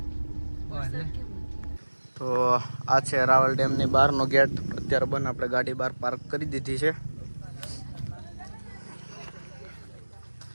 તો આ છે રાવલ ડેમની બહારનો ગેટ. અત્યારે બંધ. આપણે ગાડી બહાર પાર્ક કરી દીધી છે.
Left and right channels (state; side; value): inverted; both; correlation -1.00